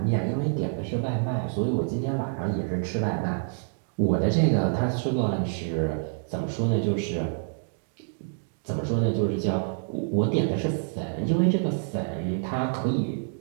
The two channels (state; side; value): silent; left; digital silence